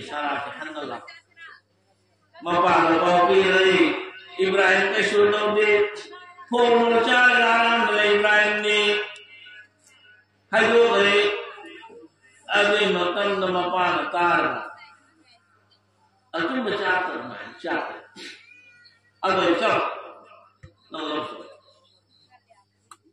hanala mapala ko pili Ibrahim kay sunod di puro cha laram na Ibrahim ni hayo kay adi matan na mapala tar atu macata na chat ado chat na loso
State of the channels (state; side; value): identical; both; correlation 1.00